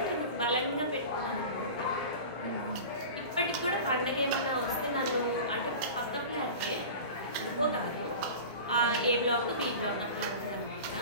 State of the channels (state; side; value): inverted; both; correlation -0.34